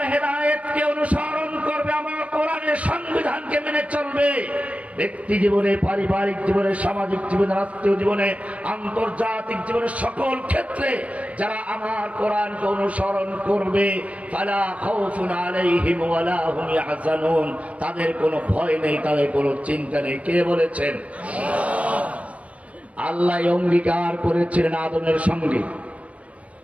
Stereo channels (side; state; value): left; late; 0.065 ms